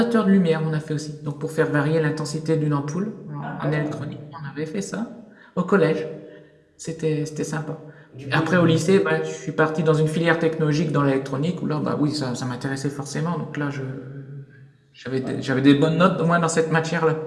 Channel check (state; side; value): identical; both; correlation 1.00